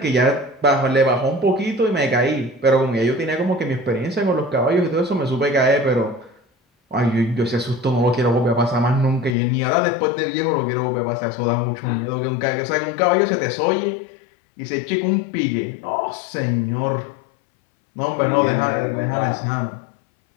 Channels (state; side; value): drops out; right; at 9.3 s